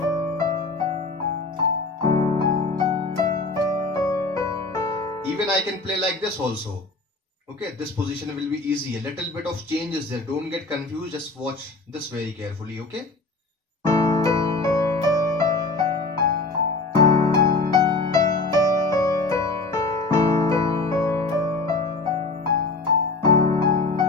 Even I can play like this also. Okay, this position will be easy. A little bit of change is there. Don't get confused. Just watch this very carefully. Okay.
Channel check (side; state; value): right; quieter; 3.5 dB